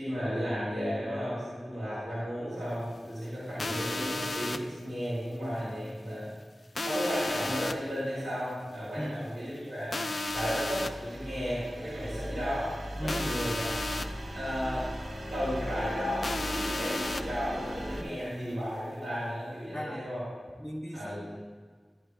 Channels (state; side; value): normal; both; correlation 0.94